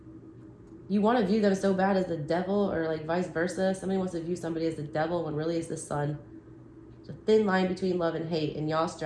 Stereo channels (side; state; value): both; identical; correlation 1.00